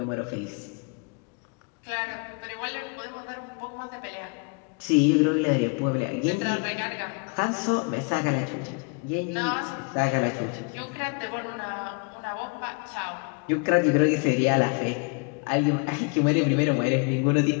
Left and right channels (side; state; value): right; quieter; 34.4 dB